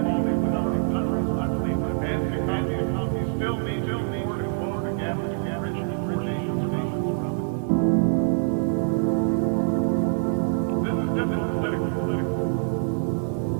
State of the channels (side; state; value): left; silent; 62 dB below the other